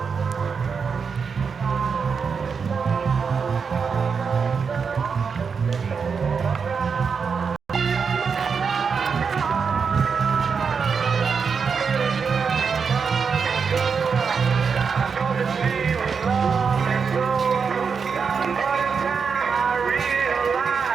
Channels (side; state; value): left; quieter; 5.8 dB